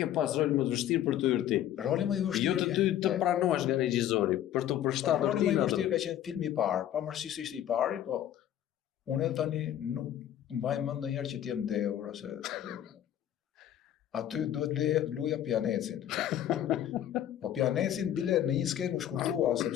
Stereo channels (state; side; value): quieter; right; 11.3 dB